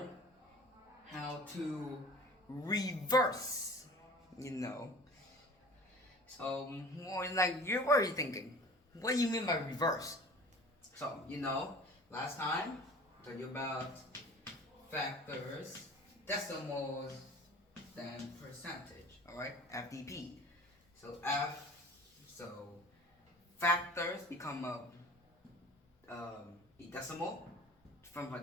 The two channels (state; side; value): normal; both; correlation 0.42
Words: how to reverse, you know. So, more like, you're already thinking, what do you mean by reverse? So, last time I told you about factors, decimals, then percentage, alright? FDP. So factors become a decimal. From a